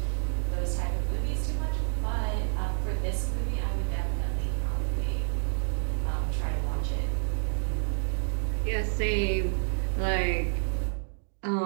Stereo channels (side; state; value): left; silent; digital silence